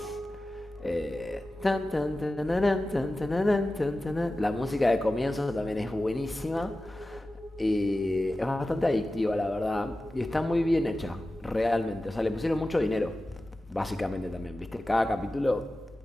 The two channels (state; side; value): normal; both; correlation 0.94